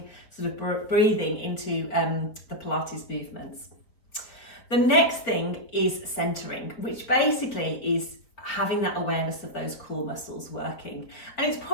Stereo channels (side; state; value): right; late; 4.7 ms